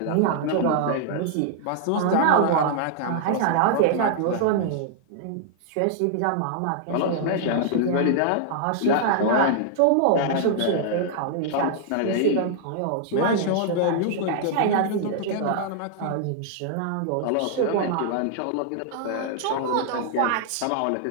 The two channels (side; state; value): both; different; correlation -0.01